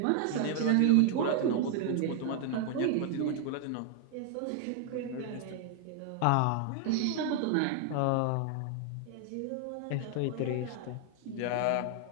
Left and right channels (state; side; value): different; both; correlation 0.00